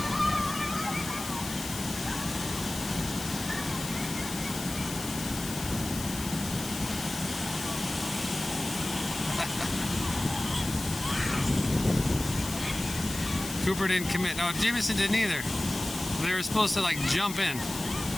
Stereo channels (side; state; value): left; noise; hiss, 9 dB below the sound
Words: Cooper didn't commit. No, Jameson didn't either. They were supposed to like jump in.